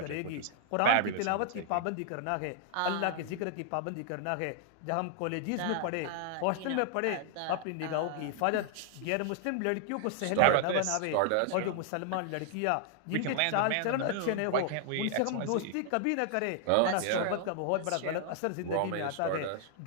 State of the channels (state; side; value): different; both; correlation 0.00